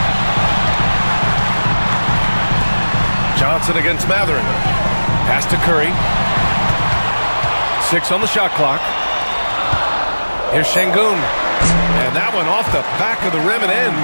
Johnson against Matherin. Pass to Curry. 6 on the shot clock. Here's Şengün. And that one off the back of the rim and in.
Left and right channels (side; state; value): both; inverted; correlation -1.00